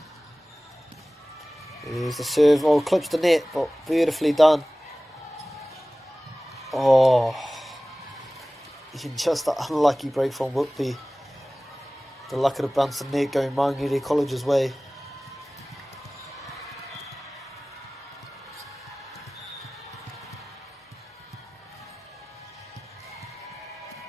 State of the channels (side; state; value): both; normal; correlation 0.98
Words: There's the serve, oh, clips the net, but beautifully done. Oh, just an unlucky break from Whitby. The luck of the bounce the net going Maungere College's way.